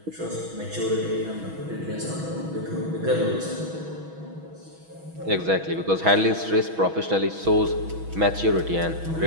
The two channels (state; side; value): late; left; 6.2 ms